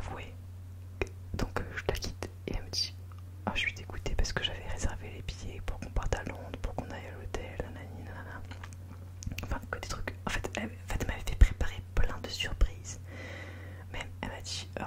Donc, je la quitte. Et elle me dit oh, je suis dégoûtée parce que j'avais réservé les billets pour qu'on parte à Londres, pour qu'on aille à l'hôtel, nanani, nanana. Enfin, que des trucs. En fait, elle m'avait fait préparer plein de surprises. Même, elle m'a dit,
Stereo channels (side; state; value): both; identical; correlation 1.00